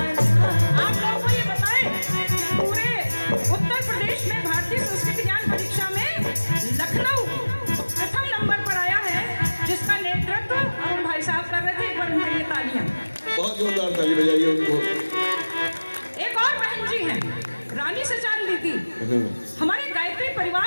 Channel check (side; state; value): both; inverted; correlation -1.00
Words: रा। आप लोगों को ये बताएं, पूरे उत्तर प्रदेश में भारतीय संस्कृति ज्ञान परीक्षा में लखनऊ प्रथम नंबर पर आया है, जिसका नेतृत्व अरुण भाई साहब कर रहे थे। एक बार उनके लिए तालियां। बहुत जोरदार ताली बजाइए उनको। एक और बहन जी हैं, रानी सचान दीदी। हमारे गायत्री